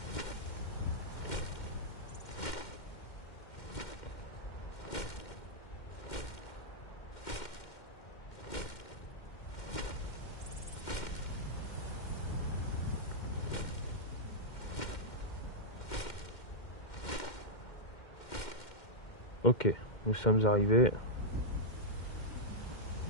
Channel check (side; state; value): right; late; 2.1 ms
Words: Ok, nous sommes arrivés.